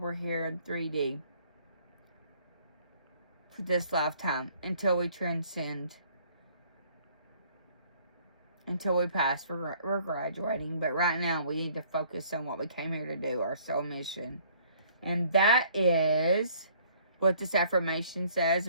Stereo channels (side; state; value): both; inverted; correlation -0.59